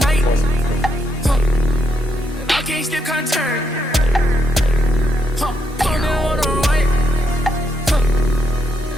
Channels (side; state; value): both; normal; correlation 0.80